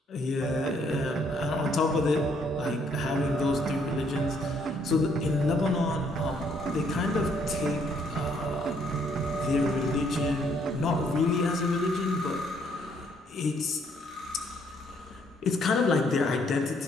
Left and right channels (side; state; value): both; normal; correlation 0.68